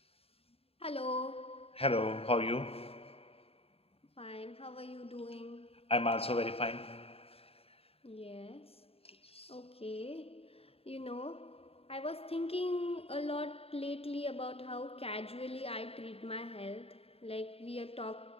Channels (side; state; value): right; late; 0.28 ms